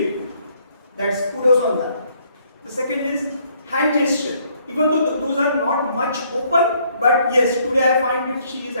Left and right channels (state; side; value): inverted; both; correlation -0.67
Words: That's kudos on that. The second is hand gesture. Even though those are not much open, but yes, today I find that she is